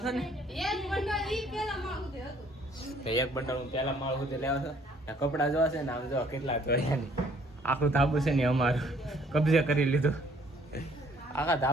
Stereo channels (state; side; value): normal; both; correlation 0.61